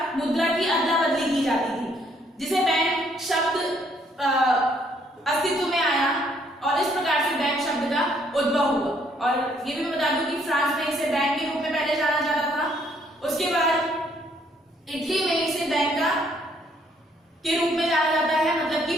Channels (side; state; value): both; normal; correlation 0.67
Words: मुद्रा की अदला बदली की जाती थी, जिसे बैंक शब्द अस्तित्व में आया और इस प्रकार से बैंक शब्द का उद्भव हुआ। और ये भी मैं बता दूं कि फ्रांस में इसे बैंक के रूप में पहले जाना जाता था। उसके बाद इटली में इसे बैंक का के रूप में जाना जाता है, मतलब कि